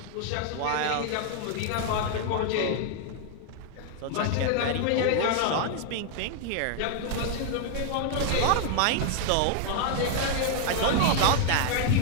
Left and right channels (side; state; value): both; different; correlation 0.00